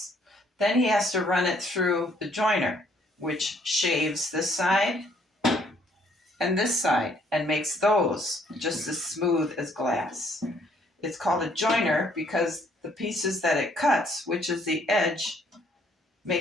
Then he has to run it through the joiner, which shaves this side and this side and makes those just as smooth as glass. It's called a joiner because the pieces that it cuts, which is the edge,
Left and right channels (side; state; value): both; normal; correlation 0.65